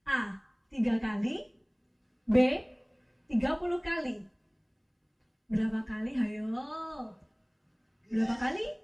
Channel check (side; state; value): both; identical; correlation 1.00